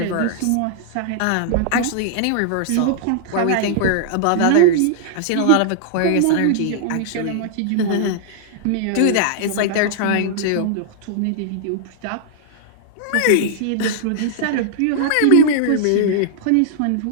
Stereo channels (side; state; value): both; different; correlation -0.01